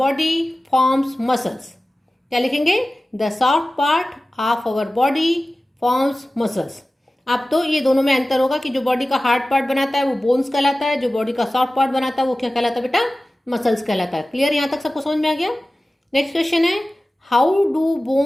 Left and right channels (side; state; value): both; normal; correlation 0.96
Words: forms muscles. क्या लिखेंगे? The soft part of our body forms muscles. अब तो ये दोनों में अंतर होगा कि जो बॉडी का हार्ड पार्ट बनाता है वो बोन्स कहलाता है, जो बॉडी का सॉफ्ट पार्ट बनाता है वो क्या कहलाता है बेटा? मसल्स कहलाता है। क्लियर? यहां तक सबको समझ में आ गया? नेक्स्ट क्वेश्चन है, how do